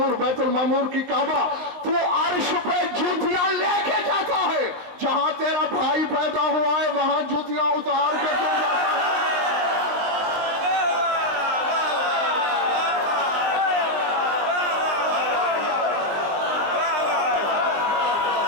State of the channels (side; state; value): left; late; 20 ms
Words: بیت المعمور کی کعبہ۔ تو عرش پہ جوتیاں لے کے جاتا ہے، جہاں تیرا بھائی پیدا ہوا ہے وہاں جوتیاں اتار کے کیوں جاتا ہے؟